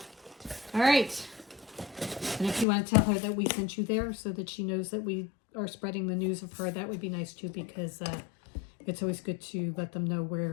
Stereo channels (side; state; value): right; drops out; at 2.7 s